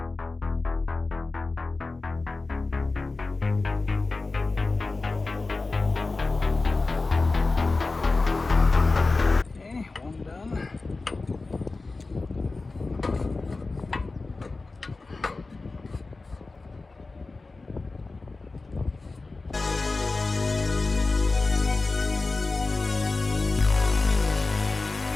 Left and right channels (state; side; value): quieter; right; 3.6 dB